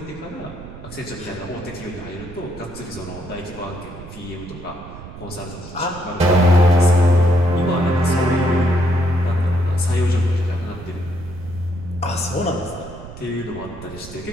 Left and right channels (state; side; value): noise; right; rumble, 14 dB below the sound